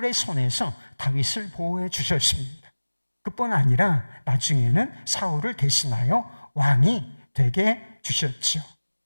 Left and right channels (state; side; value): inverted; both; correlation -1.00